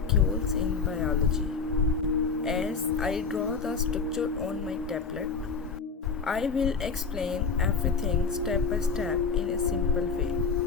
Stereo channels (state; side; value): quieter; right; 5.1 dB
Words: in biology. As I draw the structure on my tablet, I will explain everything step by step in a simple way.